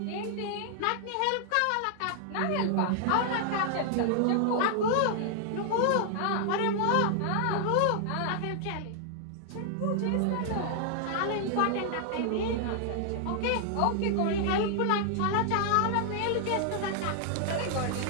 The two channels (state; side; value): different; both; correlation 0.00